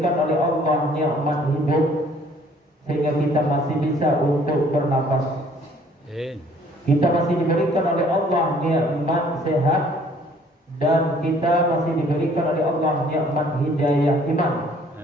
oleh Allah nikmat hidup sehingga kita masih bisa untuk bernapas. Kita masih diberikan oleh Allah nikmat sehat dan kita masih diberikan oleh Allah nikmat hidayah iman.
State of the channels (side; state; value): both; normal; correlation 0.58